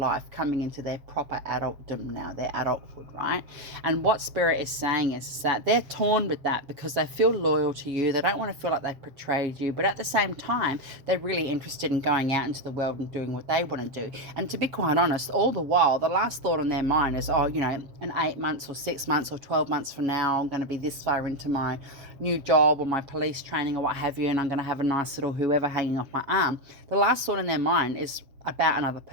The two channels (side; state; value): left; late; 7.3 ms